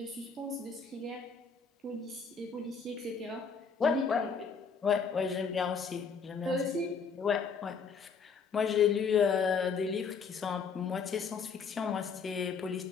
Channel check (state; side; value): quieter; right; 5.6 dB